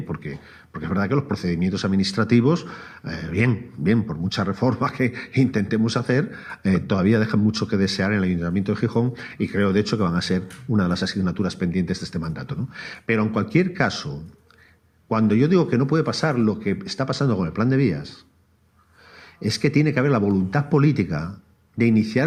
porque es verdad que los procedimientos administrativos, bien, por mucha reforma que intentemos hacer, todavía dejan mucho que desear en el Ayuntamiento de Gijón y creo, de hecho, que van a ser una de las asignaturas pendientes de este mandato, ¿no? Pero en cualquier caso, cuando yo digo que no puede pasar lo que está pasando con el plan de vías, es que tiene que haber la voluntad política de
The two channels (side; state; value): both; identical; correlation 1.00